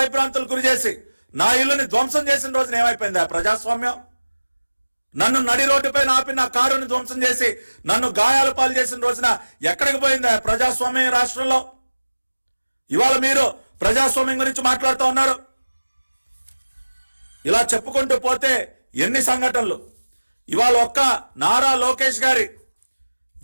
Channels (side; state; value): both; inverted; correlation -1.00